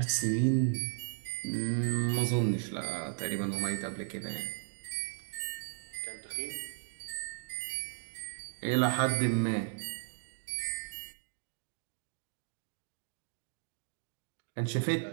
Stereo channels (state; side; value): silent; left; digital silence